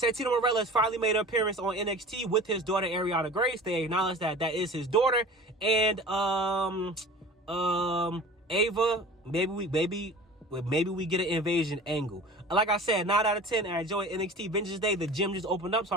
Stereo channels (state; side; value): normal; both; correlation 0.39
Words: Marella has finally made an appearance on NXT with his daughter Ariana Grace. They acknowledge that that is his daughter. And Ava, maybe we get an invasion angle. Like I said, 9 out of 10. I enjoy NXT Vengeance Day. The gym just opened up, so